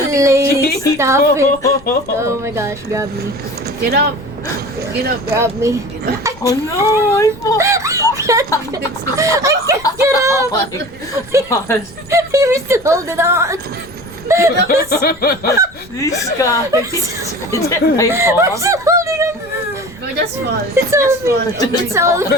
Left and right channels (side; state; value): left; noise; rumble, 24 dB below the sound